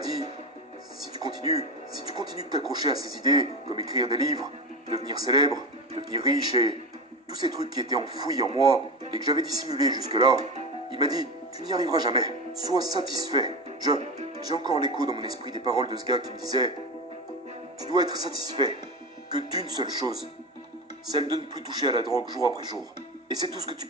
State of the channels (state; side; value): normal; both; correlation 0.22